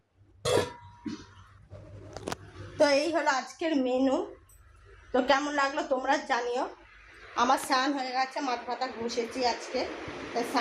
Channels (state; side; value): identical; both; correlation 1.00